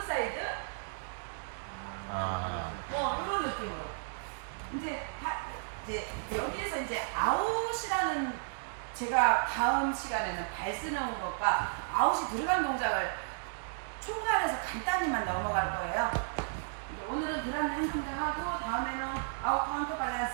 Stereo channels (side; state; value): left; silent; digital silence